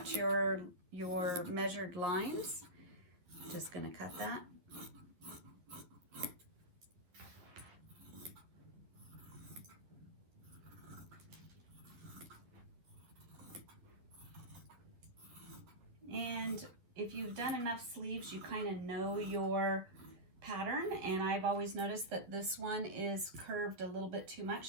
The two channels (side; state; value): left; late; 11 ms